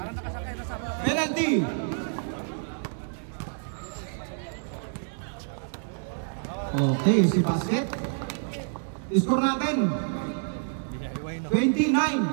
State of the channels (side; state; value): left; silent; 59 dB below the other